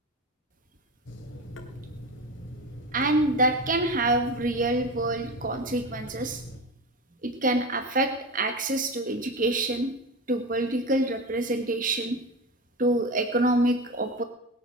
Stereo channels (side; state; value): both; normal; correlation 0.24